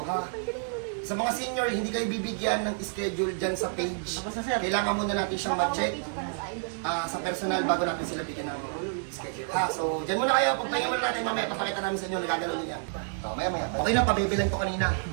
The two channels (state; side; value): silent; left; digital silence